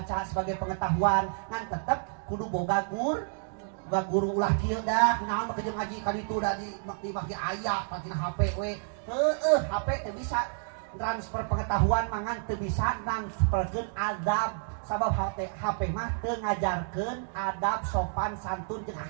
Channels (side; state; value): left; silent; digital silence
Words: sebagai pengetahuan ngan tetep kudu boga guru ulah kieu dah. Naon mah kejeung ngaji ka ditu da di bagi aya patina HP we. Heueuh, HP teu bisa transfer pengetahuan mangan teu bisa transferkeun adab. Sabab HP mah teu ngajarkeun adab sopan santun jeung